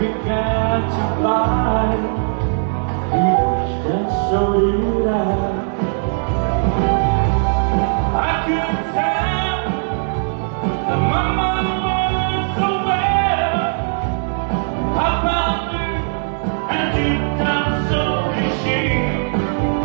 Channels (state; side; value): silent; left; digital silence